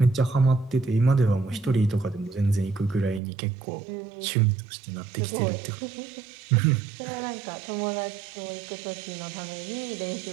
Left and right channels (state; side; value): drops out; left; at 3.2 s